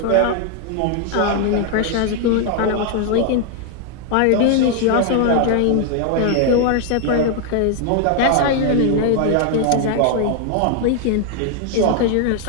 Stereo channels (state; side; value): different; both; correlation 0.00